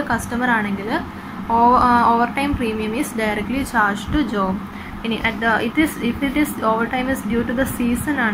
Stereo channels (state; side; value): identical; both; correlation 1.00